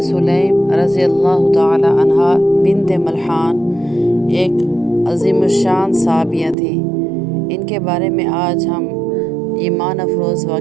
سلیم رضی اللہ تعالی عنہا بنت ملحان ایک عظیم الشان صحابیہ تھی۔ ان کے بارے میں آج ہم ایمان افروز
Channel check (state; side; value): drops out; left; at 6.6 s